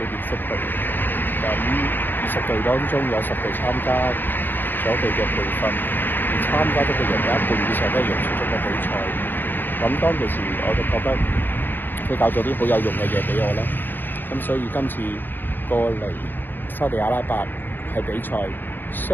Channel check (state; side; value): late; right; 0.093 ms